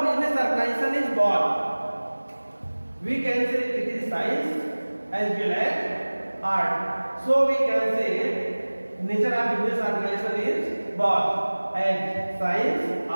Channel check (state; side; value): inverted; both; correlation -1.00